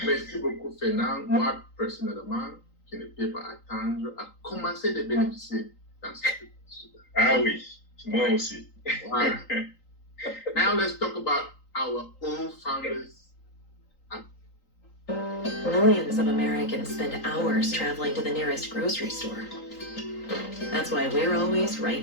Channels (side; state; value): right; late; 3.9 ms